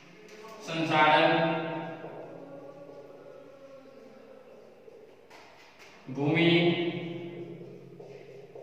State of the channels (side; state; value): both; identical; correlation 1.00